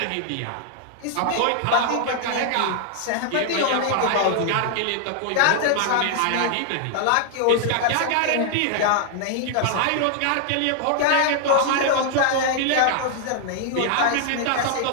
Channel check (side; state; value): both; different; correlation 0.00